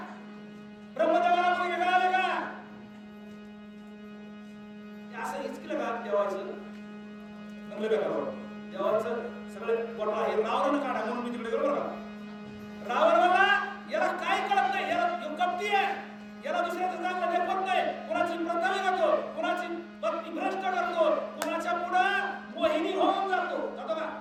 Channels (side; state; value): both; identical; correlation 1.00